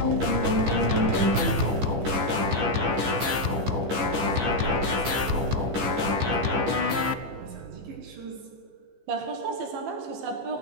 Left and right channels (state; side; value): late; left; 15 ms